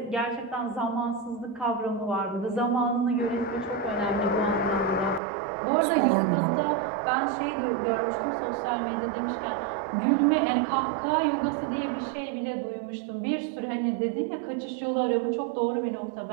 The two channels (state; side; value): drops out; left; at 5.2 s